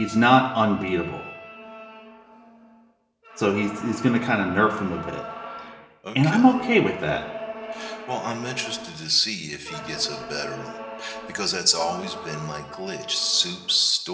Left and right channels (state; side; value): identical; both; correlation 1.00